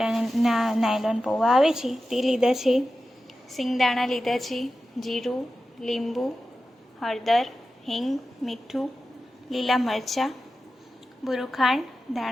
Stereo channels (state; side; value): normal; both; correlation 0.93